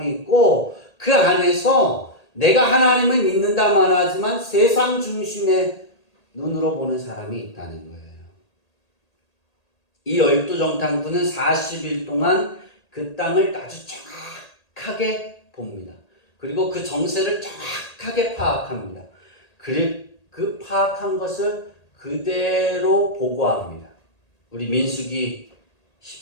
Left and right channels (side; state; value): right; late; 1.8 ms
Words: 있고 그 안에서 내가 하나님을 믿는다만 하지만 세상 중심의 눈으로 보는 사람이 있다는 거예요. 이 12정탐꾼은 40일 동안 그 땅을 아주 정확하게 봅니다. 그리고 그 정세를 정확하게 파악합니다. 그 파악한 것을 그대로 보고합니다. 우리 민수기